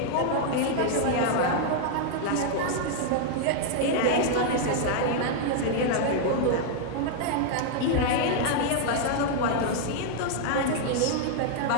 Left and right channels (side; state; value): both; different; correlation 0.00